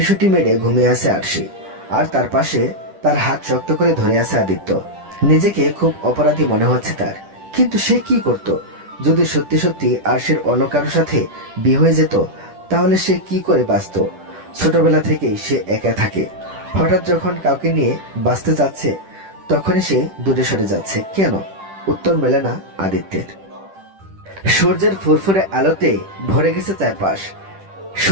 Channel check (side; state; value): left; late; 10 ms